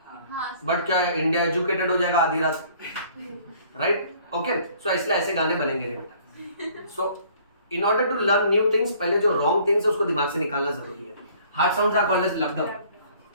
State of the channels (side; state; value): both; inverted; correlation -0.56